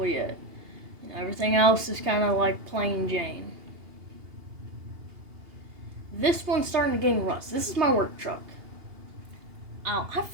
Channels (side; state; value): left; late; 2.8 ms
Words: it. Everything else is kind of like plain Jane. This one's starting to gain rust. This is my work truck. I